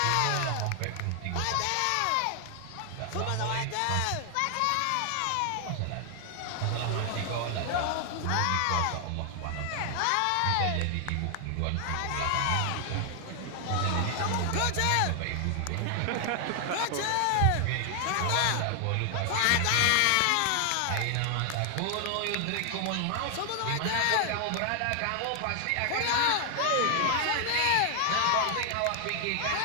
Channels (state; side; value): different; both; correlation 0.00